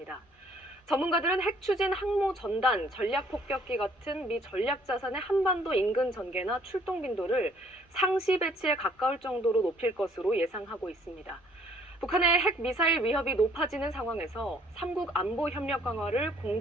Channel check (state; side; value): normal; both; correlation 0.61